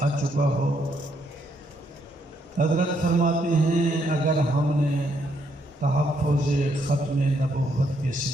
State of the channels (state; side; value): normal; both; correlation 0.74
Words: آ چکا ہو۔ حضرت فرماتے ہیں اگر ہم نے تحفظ ختم نبوت کے